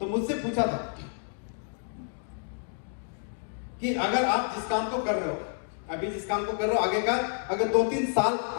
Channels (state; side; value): silent; right; digital silence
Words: मुझसे पूछा था कि अगर आप जिस काम को कर रहे हो, अभी जिस काम को कर रहे हो, आगे का अगर 2-3 साल